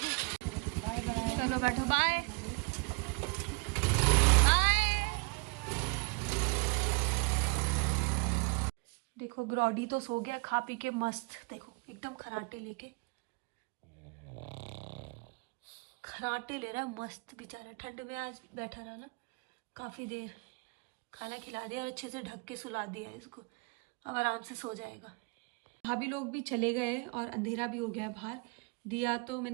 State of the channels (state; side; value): quieter; left; 32.1 dB